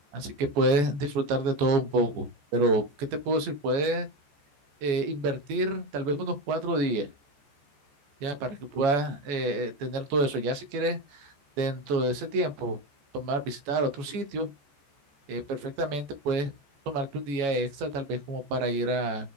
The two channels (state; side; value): late; left; 14 ms